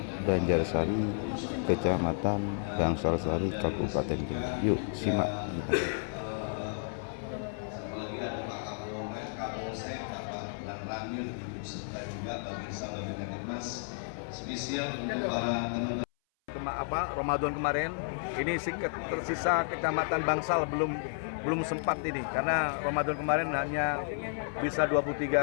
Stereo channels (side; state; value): right; silent; 56 dB below the other